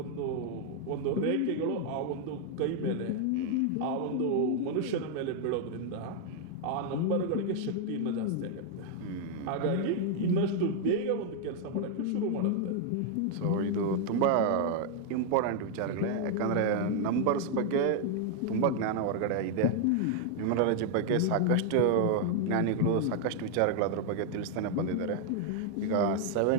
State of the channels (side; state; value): both; different; correlation 0.00